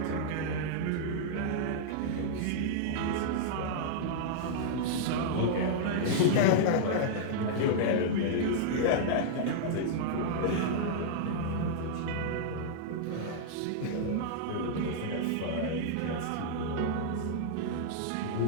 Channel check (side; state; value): both; different; correlation -0.02